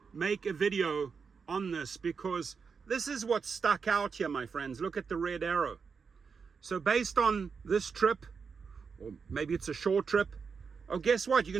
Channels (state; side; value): quieter; left; 5.6 dB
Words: make a video on this, because this is what stuck out here, my friends. Look at the red arrow. So based on this trip, or maybe it's a short trip, oh, guess what? You're